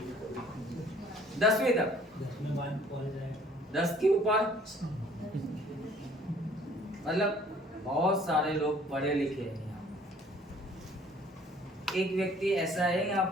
10वीं तक, 10 के ऊपर, मतलब बहुत सारे लोग पढ़े लिखे हैं यहाँ। एक व्यक्ति ऐसा है यहाँ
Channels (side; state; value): both; normal; correlation 0.56